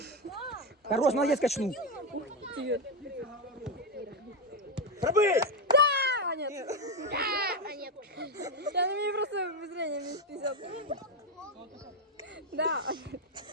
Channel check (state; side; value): normal; both; correlation 0.08